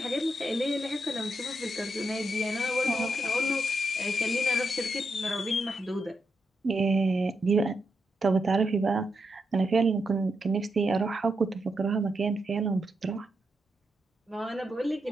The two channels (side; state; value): both; normal; correlation 0.83